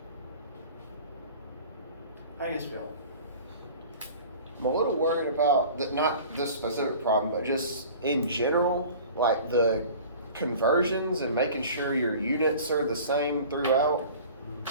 How do you guys feel? I'm a little worried about not this specific problem, but just in general, like the conversions and making sure your units are the same throughout.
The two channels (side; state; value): both; inverted; correlation -0.43